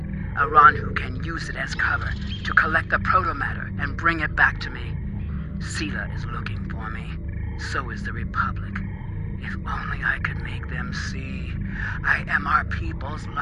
Aranhu can use it as cover to collect the protomatter and bring it back to me. Sela is looking for me. So is the Republic. If only I could make them see I am our people's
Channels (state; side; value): identical; both; correlation 1.00